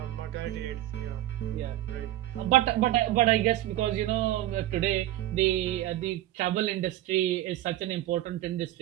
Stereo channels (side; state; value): left; quieter; 14.5 dB